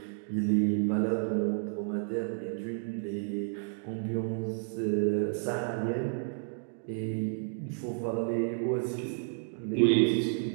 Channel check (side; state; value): left; silent; digital silence